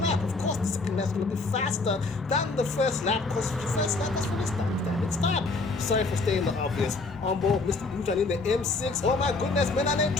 Of course, the second lap is going to be faster than the first lap because the first lap is when it stopped. Sorry for staying the obvious. On board, Mr. Boomtown in the M6. Oh my goodness, Menane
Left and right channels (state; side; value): quieter; right; 3.6 dB